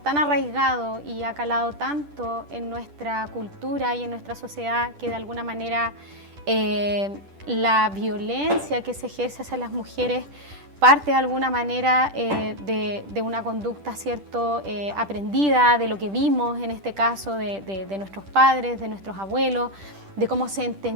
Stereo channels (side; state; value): left; late; 10 ms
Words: arraigado y ha calado tanto en nuestra cultura y en nuestra sociedad que de alguna manera la violencia que se ejerce hacia las mujeres parte de alguna manera de una conducta, ¿cierto?, aprendida, de lo que vimos en este caso de nuestros padres, de nuestros abuelos, de cómo se